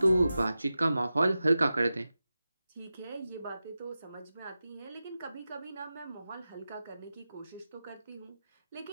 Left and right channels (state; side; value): inverted; both; correlation -0.93